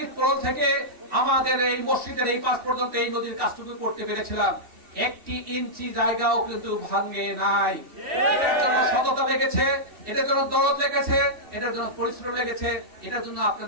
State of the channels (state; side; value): late; left; 2.7 ms